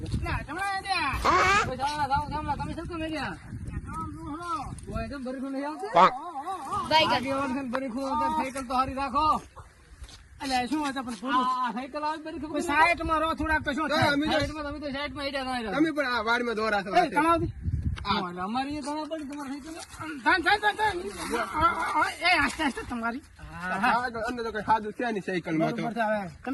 શું મેળ્યા બરીખું નહીં આવતું બરીખું સાયકલ તો હારી રાખો. એટલે શું હતા પણ પૂરું સાયકલ આવે બરીખું સાઈડ માં રહો થોડાક તો શું થાય? તમે તો સાઈડમાં હેડ્યા ના તમે પણ આ વાડમાં દોરા છો અમારી એ ગણા પડી તમારે એ આસ્તે આસ્તે તમારી સાયકલ અંદર તો કઈ સાદું છે નહીં સાયકલ માં તો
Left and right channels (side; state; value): both; identical; correlation 1.00